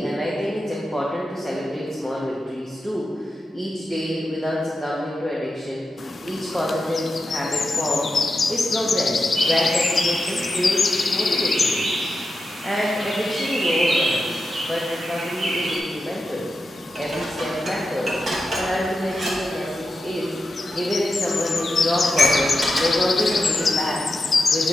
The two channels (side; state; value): both; normal; correlation 0.89